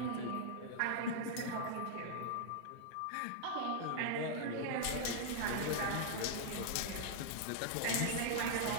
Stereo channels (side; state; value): both; different; correlation -0.01